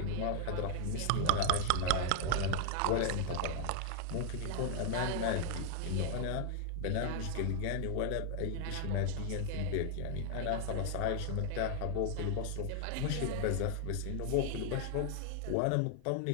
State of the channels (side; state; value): both; different; correlation 0.00